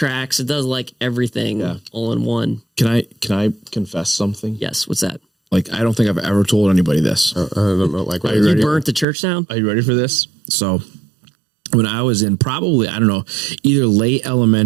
It does everything all in one. Can I confess something? Yes. What's that? I don't think I've ever told anybody this. I don't know. You burnt the church down? Are you ready for this? So when I was in probably, I don't know, either late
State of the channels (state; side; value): drops out; left; at 9.1 s